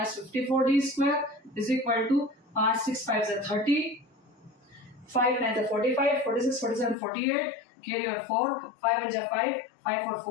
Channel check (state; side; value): drops out; right; at 7.0 s